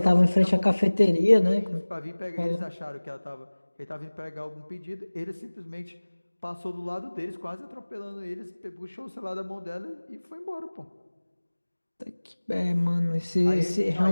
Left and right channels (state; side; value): inverted; both; correlation -1.00